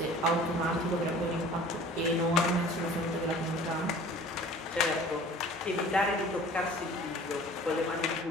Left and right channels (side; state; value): both; normal; correlation 0.46